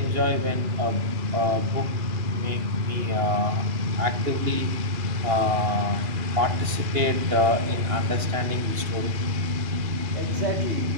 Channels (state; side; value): late; left; 2.8 ms